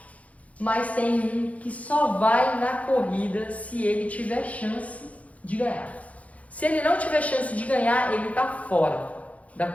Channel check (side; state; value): right; late; 0.067 ms